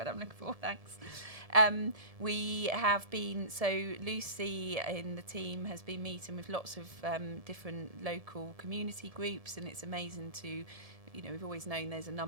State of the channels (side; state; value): left; late; 1.7 ms